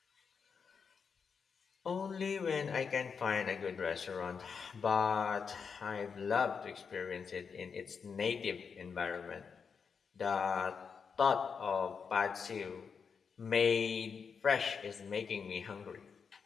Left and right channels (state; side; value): quieter; right; 6.0 dB